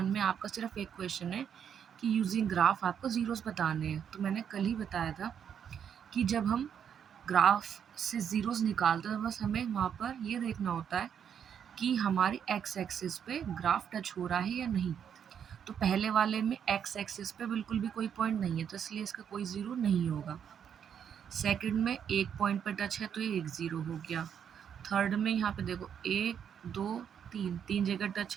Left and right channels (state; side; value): quieter; left; 8.2 dB